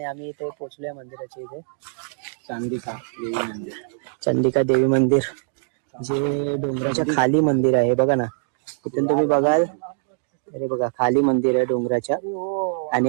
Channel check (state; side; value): silent; left; digital silence